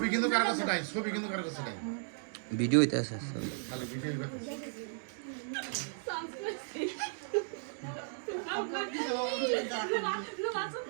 কিন্তু কার কাছে নাই ভিডিও হইতে আছে খালি ভিডিও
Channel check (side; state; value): left; silent; digital silence